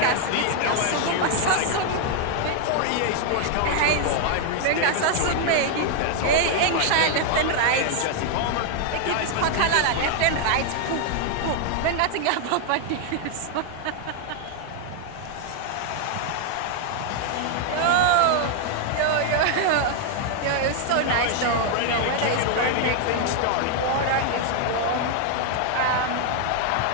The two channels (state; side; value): different; both; correlation 0.00